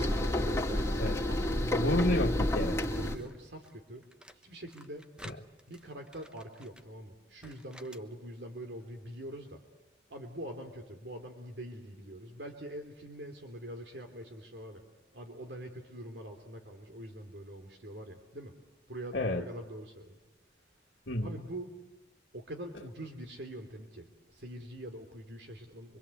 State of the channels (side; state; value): both; normal; correlation 0.63